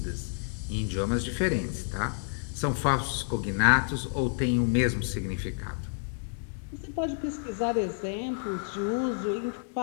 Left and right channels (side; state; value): right; silent; digital silence